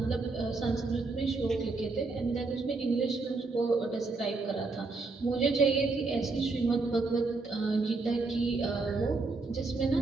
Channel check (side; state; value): left; quieter; 3.8 dB